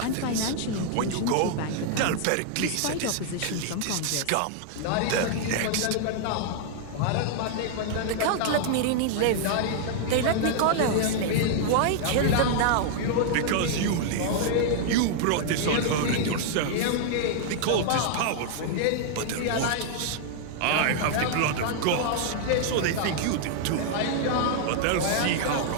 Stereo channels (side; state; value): both; different; correlation -0.01